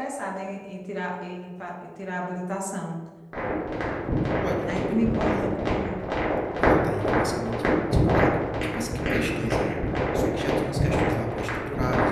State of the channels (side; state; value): both; identical; correlation 1.00